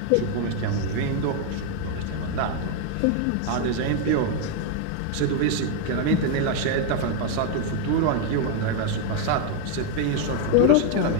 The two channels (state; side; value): different; both; correlation 0.00